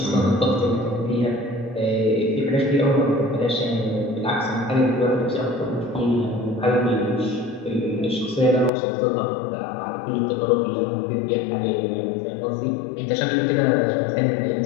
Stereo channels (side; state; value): right; drops out; at 8.7 s